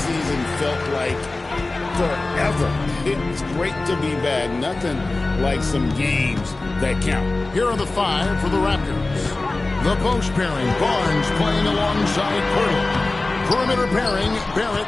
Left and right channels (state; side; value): quieter; right; 3.2 dB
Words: felt like forever. It's great to be back. Nothing like some games that count. Here are the five for the Raptors. The post pairing, Barnes playing alongside Pirtle. Perimeter pairing, Barrett